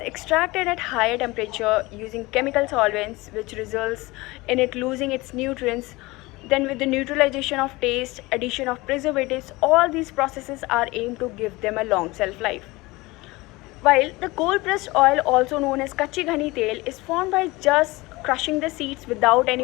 at higher temperature using chemical solvents, which results in it losing its nutrients. Then with the neutralization of taste, addition of preservatives, all these processes are aimed to give them a long shelf life. While the cold pressed oil, also known as kachi ghani tel, is formed by just crushing the seeds without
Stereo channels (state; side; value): quieter; right; 21.9 dB